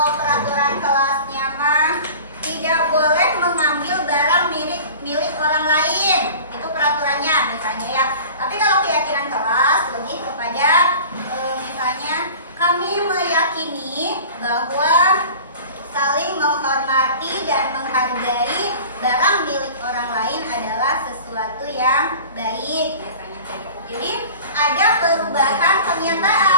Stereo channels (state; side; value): inverted; both; correlation -0.40